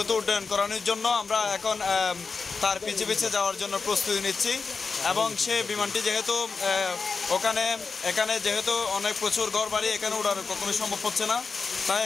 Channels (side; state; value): right; quieter; 4.8 dB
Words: উড্ডয়ন করানোর জন্য আমরা এখন তার পিছে পিছে যাওয়ার জন্য প্রস্তুতি নিচ্ছি এবং সে বিমানটি যেহেতু এখানে যেহেতু অনেক প্রচুর ঘর বাড়ি, এখানে ওঠার কখনোই সম্ভব হচ্ছে না, তাই